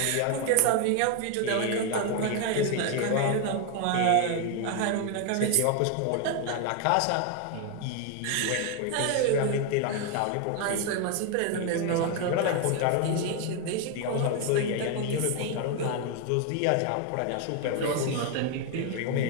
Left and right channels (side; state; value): both; different; correlation 0.01